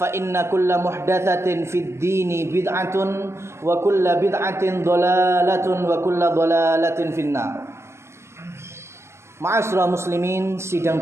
inna kulla muhdatsatin fid dini bid'atun wa kulla bid'atin dhalalatun wa kulla dhalalatin finnar. Ma'asyiral muslimin, sidang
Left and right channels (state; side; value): late; left; 0.13 ms